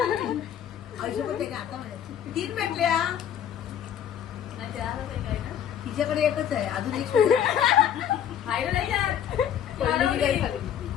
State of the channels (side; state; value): right; quieter; 9.6 dB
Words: पैसे पण ते का आता म्हणायचे. 3 भेटल्या. तिच्याकडे एकच आहे अजून एक